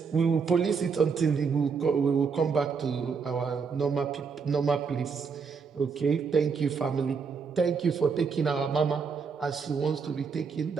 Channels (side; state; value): left; quieter; 5.6 dB